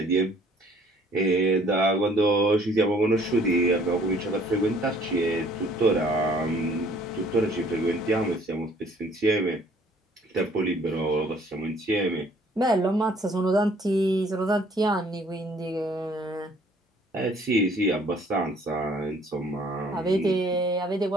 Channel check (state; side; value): normal; both; correlation 0.58